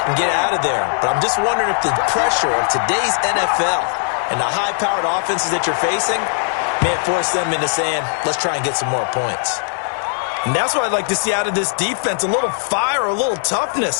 and get out of there. But I'm just wondering if the pressure of today's NFL and the high-powered offenses that you're facing may force them into saying, let's try and get some more points. And that's what I'd like to see out of this defense, a little fire, a little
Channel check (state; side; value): silent; right; 67 dB below the other